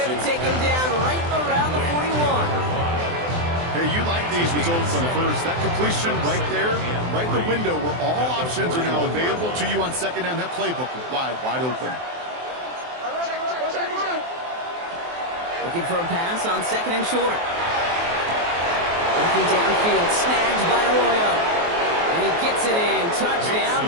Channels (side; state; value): left; late; 23 ms